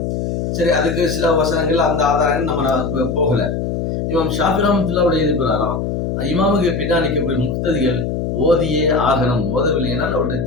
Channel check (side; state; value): left; noise; hum, 2 dB below the sound